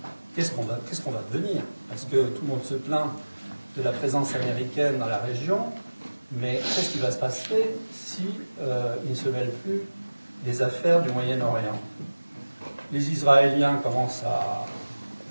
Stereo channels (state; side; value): inverted; both; correlation -1.00